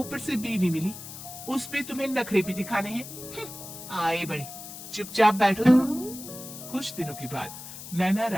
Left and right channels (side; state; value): left; noise; hiss, 12 dB below the sound